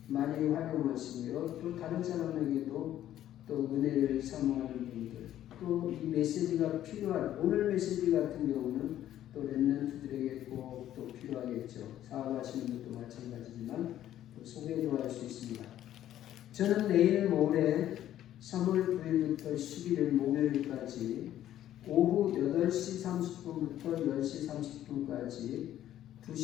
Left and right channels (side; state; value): right; quieter; 12.2 dB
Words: 많이 활용하시고요. 또 다른 사람에게도 또 은혜를 사모하는 분들, 또 이 메시지가 필요한 오늘 메시지 같은 경우는 또 렘넌트들에게 꼭 또 필요하겠죠. 사업하시는 분도 마찬가지지만 또 소개도 할 수 있습니다. 저는 내일 모레 3월 9일부터 11일 목요일까지 오후 8시 30분부터 10시 30분까지